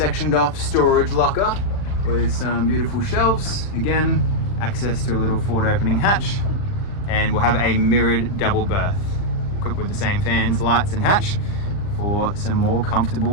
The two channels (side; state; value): right; late; 39 ms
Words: off storage locker with some beautiful shelves. Again, access to a little forward opening hatch, and we'll have a mirrored double berth equipped with the same fans, lights and hatch for some more